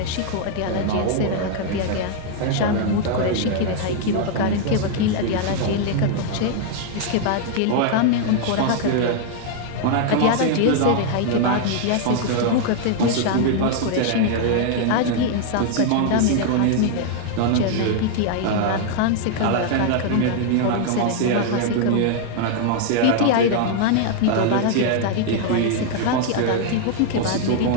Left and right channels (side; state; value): both; different; correlation 0.00